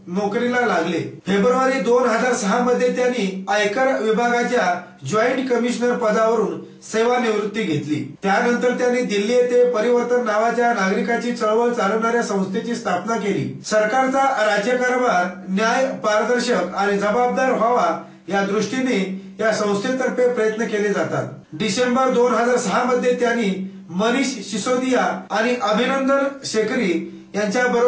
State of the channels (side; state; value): both; identical; correlation 1.00